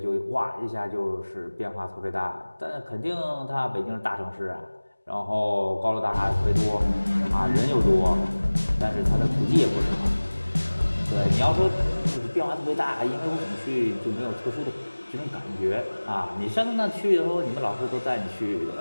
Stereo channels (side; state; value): both; inverted; correlation -1.00